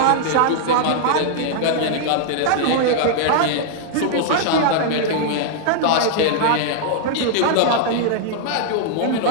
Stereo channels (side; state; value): both; different; correlation -0.01